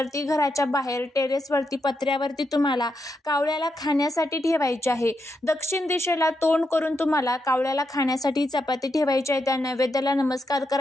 ती घराच्या बाहेर टेरेसवरती, पत्र्यावरती तुम्हाला कावळ्याला खाण्यासाठी ठेवायची आहे. दक्षिण दिशेला तोंड करून तुम्हाला कावळ्याला खाण्यासाठी चपाती ठेवायची आहे. त्या नैवेद्याला नमस्कार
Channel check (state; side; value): normal; both; correlation 0.83